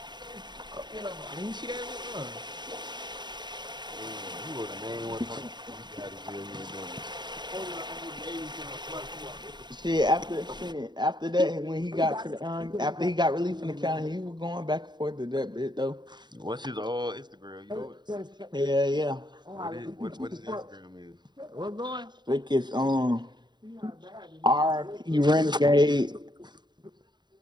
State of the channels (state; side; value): late; left; 0.21 ms